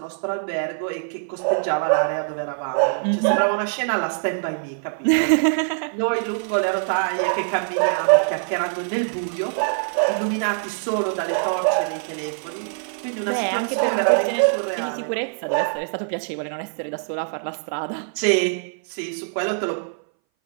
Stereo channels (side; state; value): left; silent; 60 dB below the other